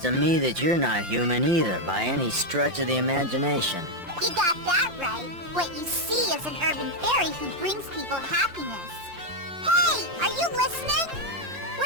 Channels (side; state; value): left; late; 5.7 ms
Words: me that you're not human either, by any stretch of the imagination. You got that right. What you see is an urban fairy who brings people happiness. Hey, are you listening?